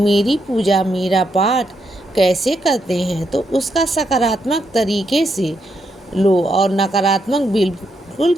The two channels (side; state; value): both; normal; correlation 0.80